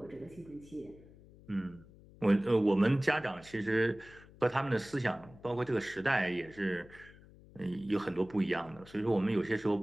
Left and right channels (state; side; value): noise; left; hum, 22 dB below the sound